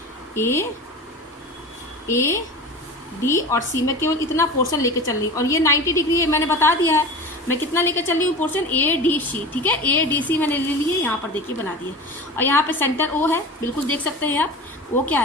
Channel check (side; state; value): both; normal; correlation 0.33